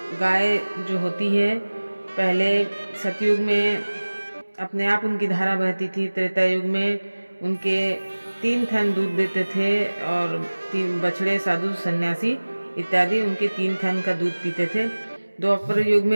गाय जो होती है, पहले सतयुग में अपने आप उनकी धारा बहती थी, त्रेता युग में उनके 3 थन दूध देते थे और 3 बछड़े, साधु, सन्यासी इत्यादि उनके 3 थन का दूध पीते थे। द्वापर युग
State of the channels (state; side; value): inverted; both; correlation -1.00